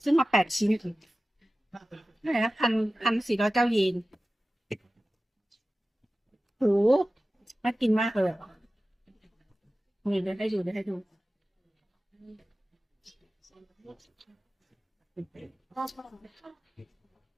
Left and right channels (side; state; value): both; normal; correlation 0.96